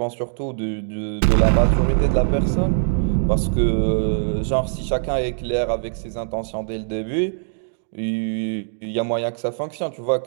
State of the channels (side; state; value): left; silent; digital silence